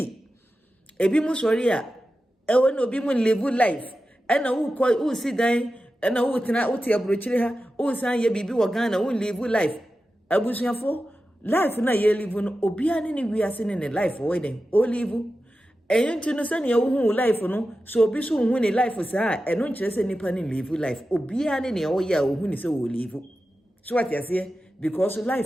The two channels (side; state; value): both; normal; correlation 0.92